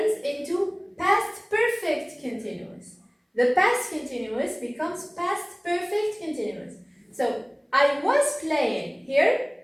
into past perfect continuous. The past continuous becomes past perfect continuous. So I was playing here,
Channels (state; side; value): identical; both; correlation 1.00